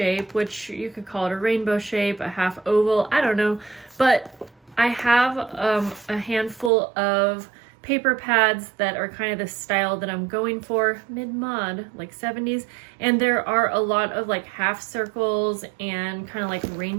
which you could call it a rainbow shape, a half oval, I don't know. But I have a handful of paper pads that are kind of the style that I'm going for, mid-mod, like 70s. And there are a lot of like half circles and kind of like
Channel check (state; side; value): drops out; left; at 6.7 s